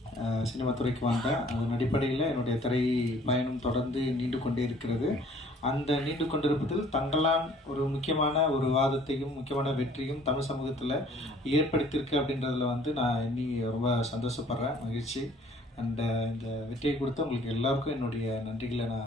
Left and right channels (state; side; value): normal; both; correlation 0.55